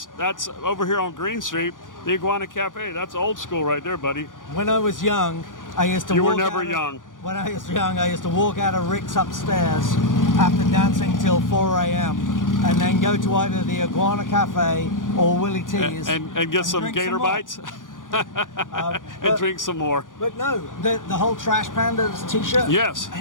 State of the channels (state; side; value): late; right; 0.89 ms